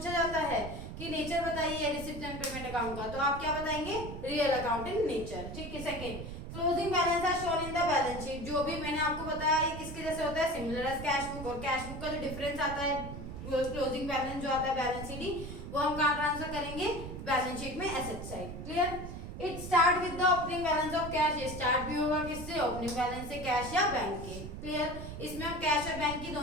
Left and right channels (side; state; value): right; noise; rumble, 9 dB below the sound